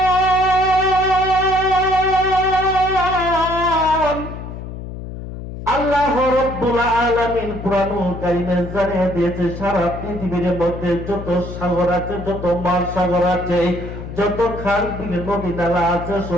আল্লাহ রাব্বুল আলামিন কোরআনুল কারীমে জানিয়ে দিয়েছে সারা পৃথিবীর মধ্যে যত সাগর আছে, যত মহাসাগর আছে, যত খাল বিল নদী নালা আছে,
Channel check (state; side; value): noise; left; hum, 10 dB below the sound